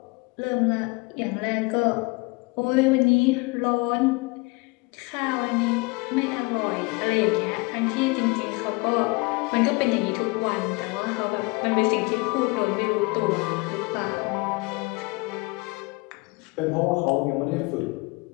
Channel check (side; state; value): right; quieter; 27.6 dB